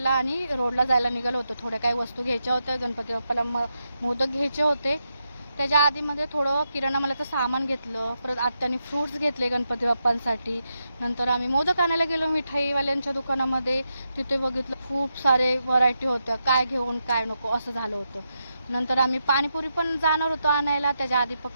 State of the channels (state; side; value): inverted; both; correlation -0.85